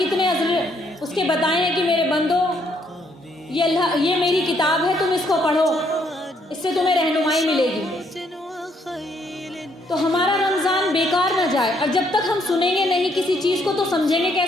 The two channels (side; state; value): both; normal; correlation 0.70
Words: اس کے بتائے ہیں کہ میرے بندو، یہ میری کتاب ہے، تم اس کو پڑھو، اس سے تمہیں رہنمائی ملے گی. تو ہمارا رمضان بیکار نہ جائے. اور جب تک ہم سنیں گے نہیں کسی چیز کو تو سمجھیں گے